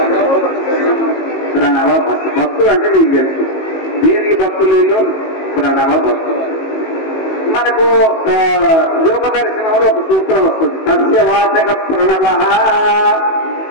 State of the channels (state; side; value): late; right; 18 ms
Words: ప్రణవ భక్తులు. భక్తులు అంటే మీకు తెలుసు, దేనికి భక్తులు? ప్రణవ భక్తులు. మనకు యోగ దర్శనంలో ఒక సూత్రం వస్తుంది, సస్యవాచక ప్రణవ.